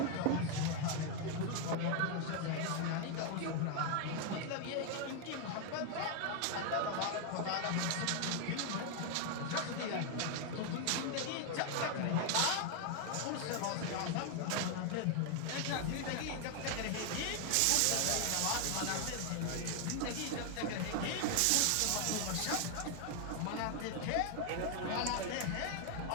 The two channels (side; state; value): both; different; correlation 0.00